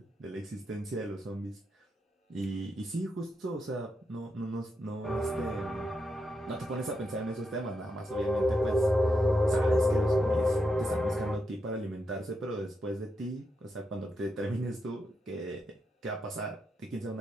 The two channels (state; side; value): normal; both; correlation 0.84